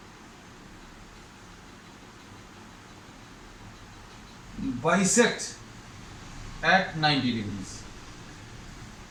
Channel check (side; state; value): both; identical; correlation 1.00